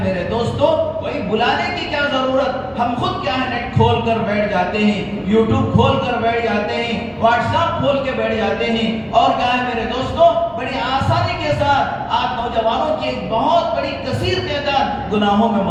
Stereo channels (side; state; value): both; identical; correlation 1.00